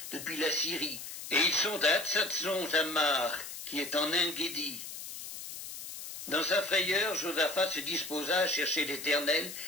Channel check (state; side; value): noise; left; hiss, 10 dB below the sound